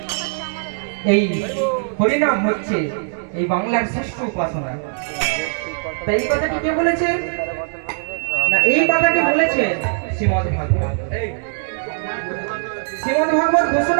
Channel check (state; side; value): silent; left; 66 dB below the other